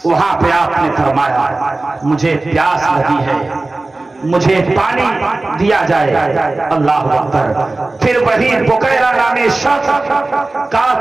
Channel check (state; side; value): quieter; left; 3.1 dB